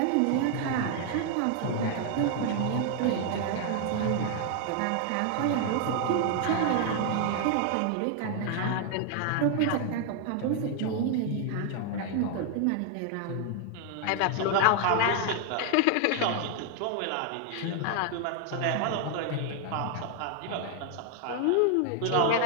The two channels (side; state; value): both; different; correlation 0.00